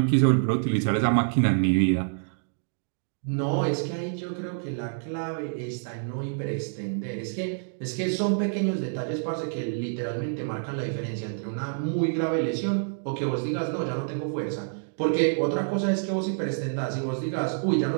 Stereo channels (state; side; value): silent; left; digital silence